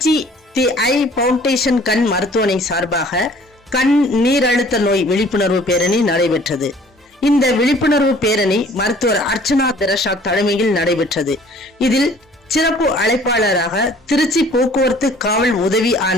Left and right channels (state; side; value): normal; both; correlation 0.53